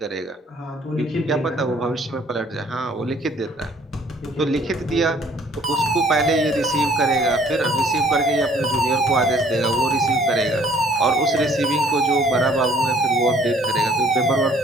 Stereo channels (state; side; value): normal; both; correlation 0.58